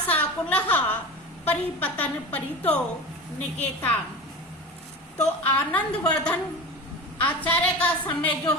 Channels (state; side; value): normal; both; correlation 0.30